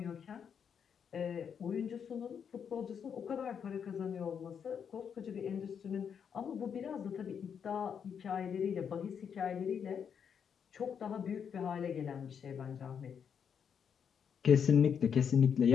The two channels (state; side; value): quieter; right; 7.4 dB